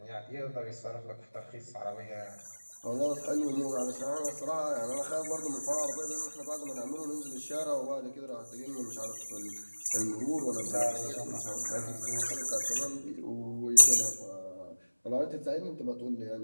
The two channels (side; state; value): both; inverted; correlation -1.00